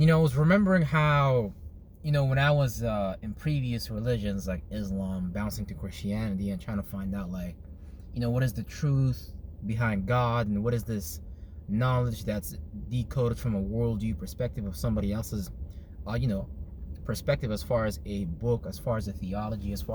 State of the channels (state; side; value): identical; both; correlation 1.00